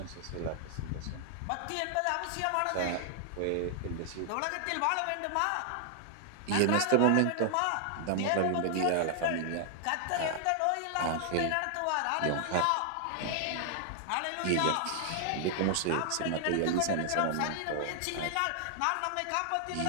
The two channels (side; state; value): both; different; correlation 0.00